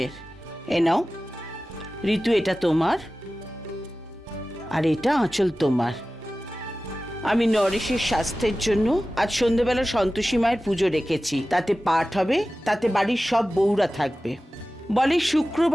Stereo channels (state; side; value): normal; both; correlation 0.95